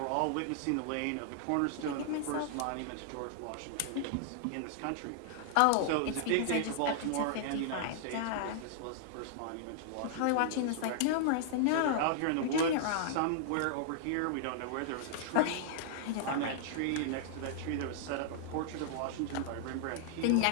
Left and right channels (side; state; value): both; different; correlation -0.01